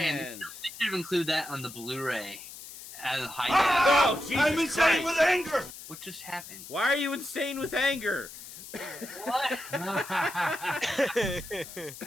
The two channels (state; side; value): noise; left; hiss, 14 dB below the sound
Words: Man, they should have included that on the Blu-ray. As a high oh, Jesus I'm insane with anger! What just happened? Why are you insane with anger? What?